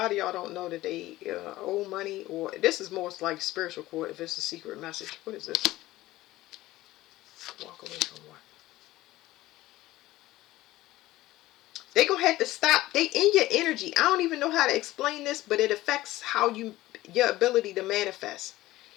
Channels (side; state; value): right; quieter; 16.9 dB